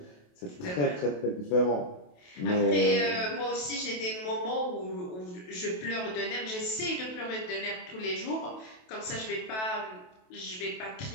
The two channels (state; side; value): late; right; 28 ms